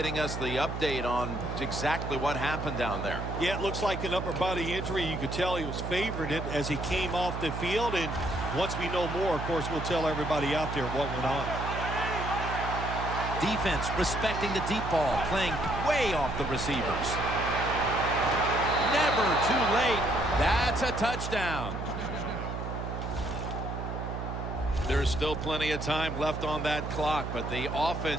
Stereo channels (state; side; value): noise; right; hum, 5 dB below the sound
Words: us the update on exactly what happened down there. Yeah, it looks like an upper body injury. You could tell he was favored it as he came off the field. And once we know more, of course, we'll tell everybody out there what went on. Defense respecting the deep ball, playing way off the receivers. Never too late. That's a touchdown. There's still plenty of time left on that clock, but the